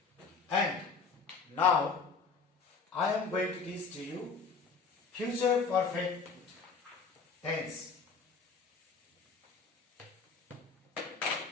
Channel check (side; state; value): right; quieter; 5.0 dB